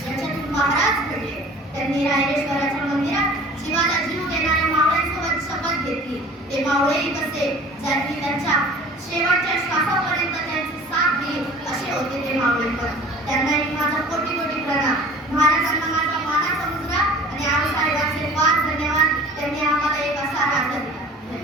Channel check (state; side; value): normal; both; correlation 0.45